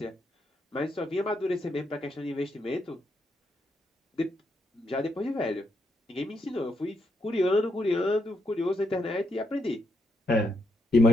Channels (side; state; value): both; normal; correlation 0.80